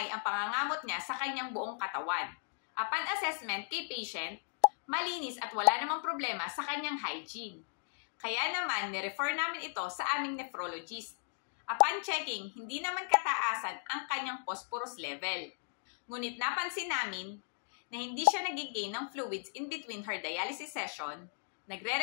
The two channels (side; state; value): right; silent; digital silence